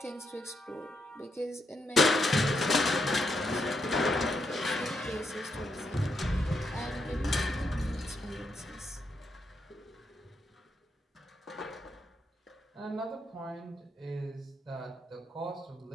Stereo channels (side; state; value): both; normal; correlation 0.80